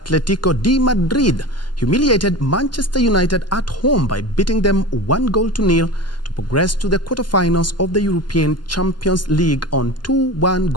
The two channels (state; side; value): late; right; 0.71 ms